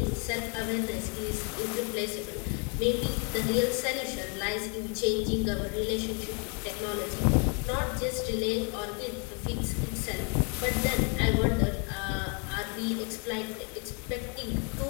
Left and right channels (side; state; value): right; quieter; 36.6 dB